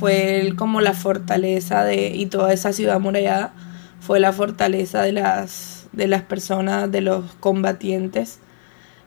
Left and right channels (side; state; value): right; silent; digital silence